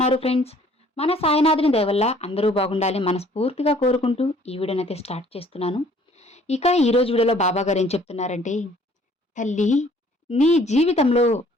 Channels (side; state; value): both; normal; correlation 0.57